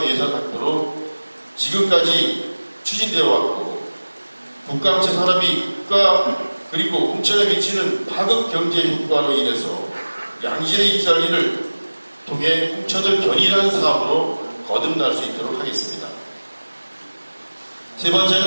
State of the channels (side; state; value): both; inverted; correlation -1.00